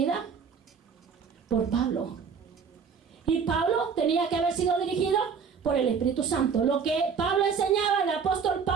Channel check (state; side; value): quieter; left; 6.1 dB